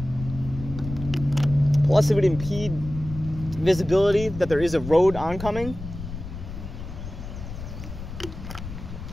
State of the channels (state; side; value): noise; left; rumble, 10 dB below the sound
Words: Plus it would impede visibility that there is a road oncoming.